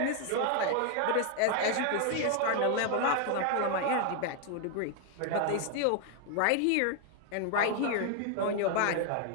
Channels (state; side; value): different; both; correlation 0.00